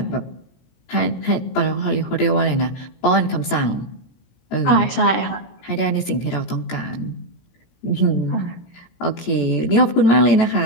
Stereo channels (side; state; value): right; late; 17 ms